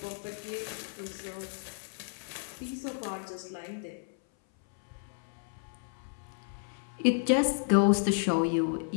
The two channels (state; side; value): silent; right; 56 dB below the other